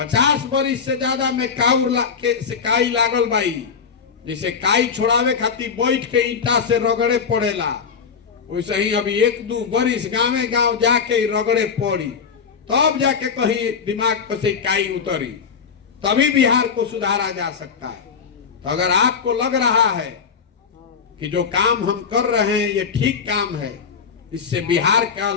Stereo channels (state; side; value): quieter; right; 6.2 dB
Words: वर्ष से ज्यादा में काई लागल बाई, जैसे काई छोड़ावे खातिर बैठ के ईटा से रगड़े पड़ेला, वैसे ही अभी 1-2 वर्ष गाँव गाँव जाके रगड़े पड़ी, तब जाके कहीं दिमाग पर से काई उतरी, तभी बिहार को सुधारा जा सकता है। तो अगर आपको लग रहा है कि जो काम हम कर रहे हैं ये ठीक काम है, इससे बिहार का